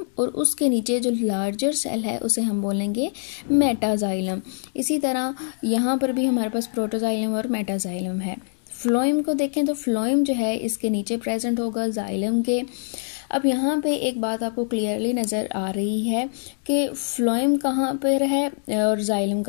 और उसके नीचे जो लार्जर सेल है उसे हम बोलेंगे मेटाजाइलम। इसी तरह यहाँ पर भी हमारे पास प्रोटोजाइलम और मेटाजाइलम है। फ्लोएम को देखें तो फ्लोएम जो है इसके नीचे प्रेजेंट होगा जाइलम के। अब यहाँ पे एक बात आपको क्लियरली नज़र आ रही है कि फ्लोएम कहाँ पर है और जाइलम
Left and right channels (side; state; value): right; silent; digital silence